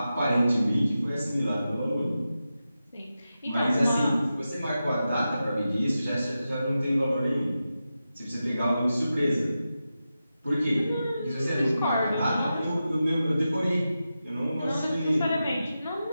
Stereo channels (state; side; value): inverted; both; correlation -0.91